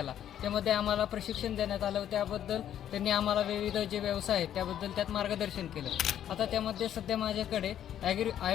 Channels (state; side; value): quieter; right; 10.5 dB